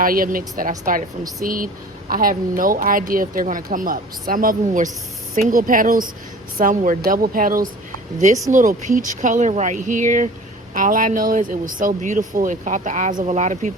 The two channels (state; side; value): normal; both; correlation 0.44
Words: mix that I started from seed. I have no idea if they're going to come up. Some of them were single petals, some were double petals. This little peach color right here, all I know is it was so beautiful. It caught the eyes of a lot of